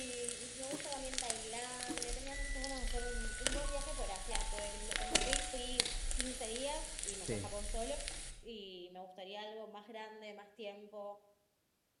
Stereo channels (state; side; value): identical; both; correlation 1.00